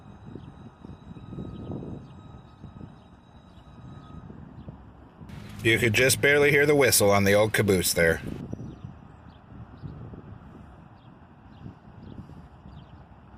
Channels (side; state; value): both; identical; correlation 1.00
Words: You could just barely hear the whistle on the old caboose there.